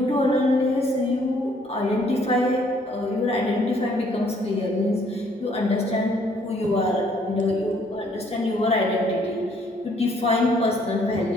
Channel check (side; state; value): both; normal; correlation 0.64